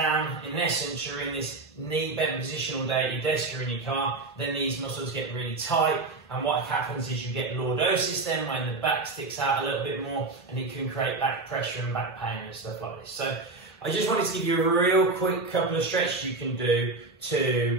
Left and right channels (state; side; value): quieter; left; 3.5 dB